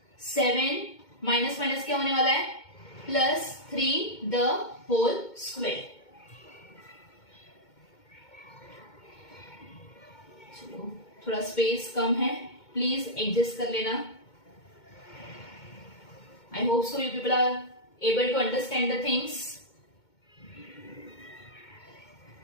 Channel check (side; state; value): right; late; 2.2 ms